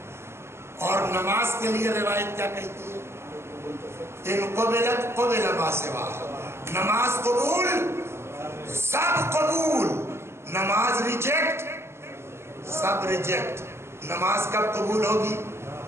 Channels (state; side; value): late; left; 0.12 ms